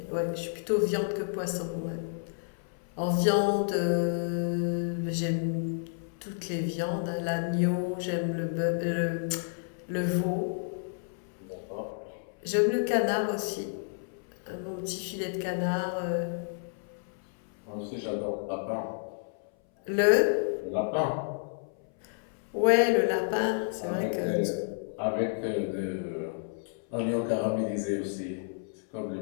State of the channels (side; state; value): right; silent; 57 dB below the other